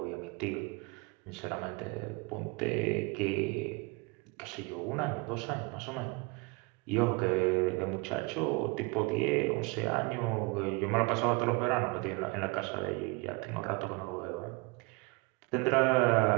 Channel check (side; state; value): left; quieter; 28.4 dB